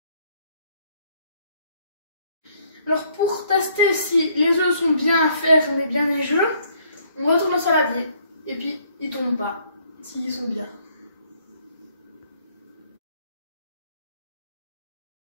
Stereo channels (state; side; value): inverted; both; correlation -0.65